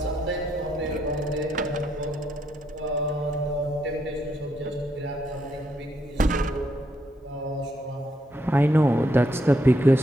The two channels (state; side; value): normal; both; correlation 0.77